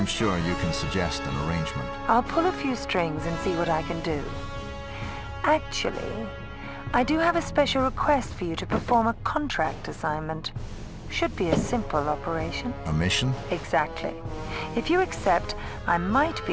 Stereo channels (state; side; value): identical; both; correlation 1.00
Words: sure you can suggest an arrangement. I'll pull a few strings and see what I can do. Actually, I do have a special request for you to perform a contract assignment. Should be a simple operation. A mission? Exactly. If you accept, I might